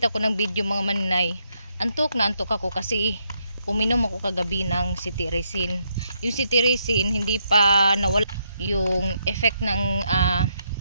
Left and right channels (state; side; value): inverted; both; correlation -0.77